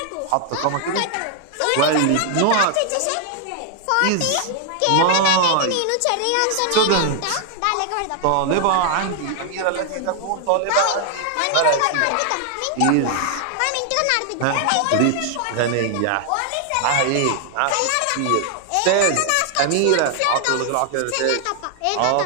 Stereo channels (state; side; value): different; both; correlation 0.00